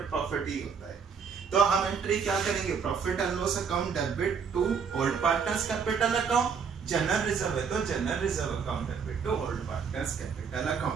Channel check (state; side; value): quieter; left; 6.2 dB